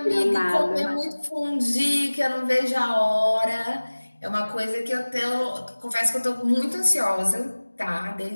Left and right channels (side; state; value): both; inverted; correlation -1.00